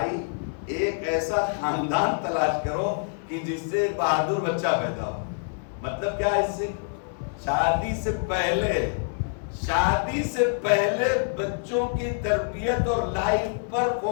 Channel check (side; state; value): right; silent; 61 dB below the other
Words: ایک ایسا خاندان تلاش کرو کہ جس سے ایک بہادر بچہ پیدا ہو. مطلب کیا؟ اس سے شادی سے پہلے بچوں کی تربیت اور لائف پر